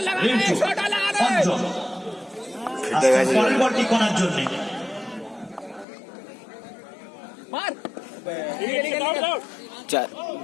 রিন্টু। অঞ্জন পরের বলটি করার জন্য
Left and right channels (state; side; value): drops out; right; at 5.9 s